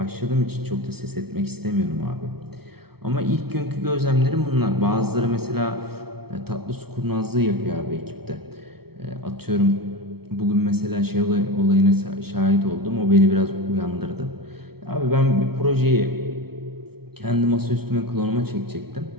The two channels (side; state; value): left; late; 0.95 ms